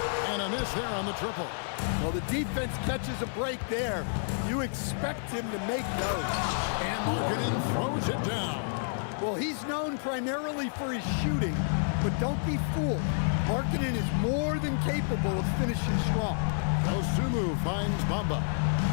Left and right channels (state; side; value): silent; right; digital silence